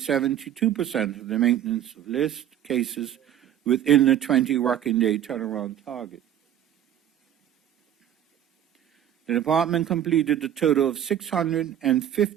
72% of the maintenance of list cases within the 20 working day turnaround target. The department completed a total of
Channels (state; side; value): quieter; left; 10.6 dB